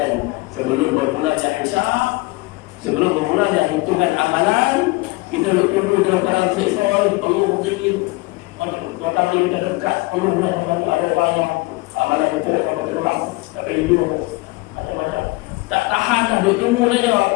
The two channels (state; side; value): quieter; right; 23.0 dB